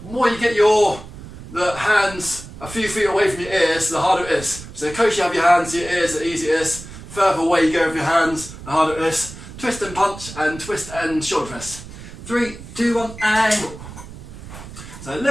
more you get the hands a few feet away from your ears, the harder it is. So the closer you have your hands to your ears, the easier it is. Further away you go with your hands, the harder it is. Twist and punch and twist and shoulder press. 3, 2, 1, angle. So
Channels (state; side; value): noise; right; rumble, 14 dB below the sound